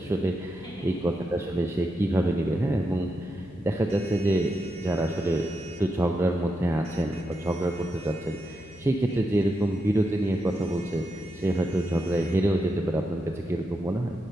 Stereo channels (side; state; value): left; noise; hum, 24 dB below the sound